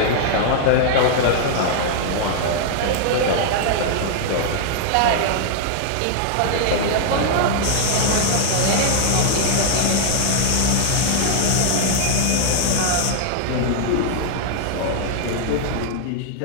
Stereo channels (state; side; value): different; both; correlation -0.01